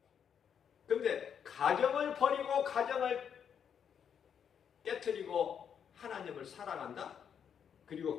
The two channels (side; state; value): right; quieter; 7.9 dB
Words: 근데 가정을 버리고 가정을 깨트리고 하나님을 사랑한다? 그리고